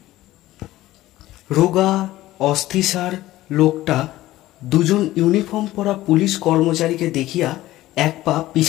রোগা অস্থিসার লোকটা 2 জন ইউনিফর্ম পরা পুলিশ কর্মচারীকে দেখিয়া এক পা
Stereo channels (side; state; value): right; quieter; 16.1 dB